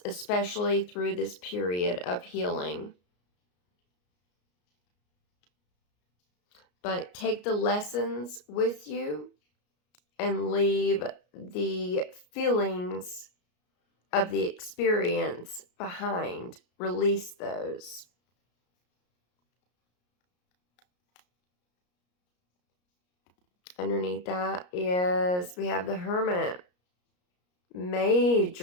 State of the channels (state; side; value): late; right; 33 ms